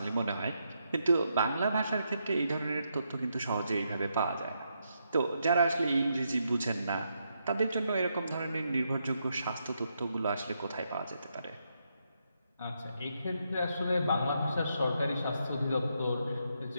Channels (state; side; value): inverted; both; correlation -0.80